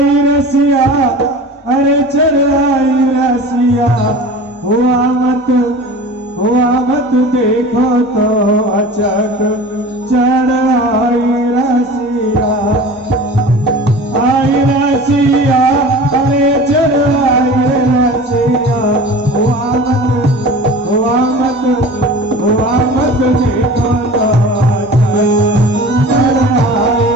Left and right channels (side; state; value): both; normal; correlation 0.38